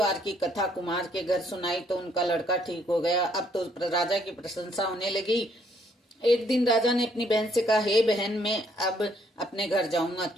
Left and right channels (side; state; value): both; normal; correlation 0.68